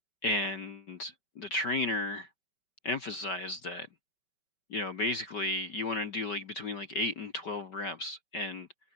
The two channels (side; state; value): right; late; 5.3 ms